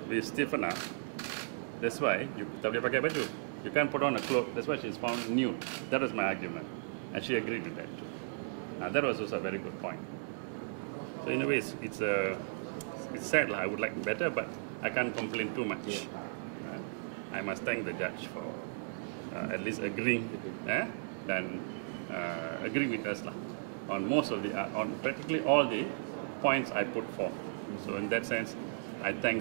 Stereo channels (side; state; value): left; silent; digital silence